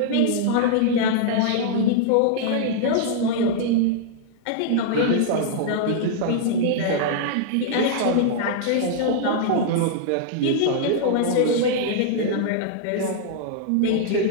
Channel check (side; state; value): both; different; correlation -0.01